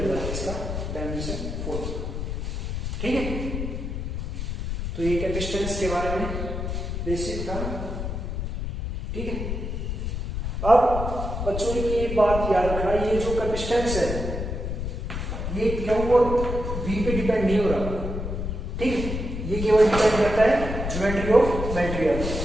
जाएगा इसका डायमेंशन फॉर्मूला। ठीक है, तो ये कैपेसिटेंस के बारे में बेसिक था। ठीक है, अब बच्चों की ये बात याद रखना, ये जो कैपेसिटेंस है ये क्यों और वी पे डिपेंड नहीं हो रहा। ठीक है, ये केवल डिपेंड करता है ज्योमेट्री ऑफ मटेरियल।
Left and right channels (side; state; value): left; noise; rumble, 4 dB below the sound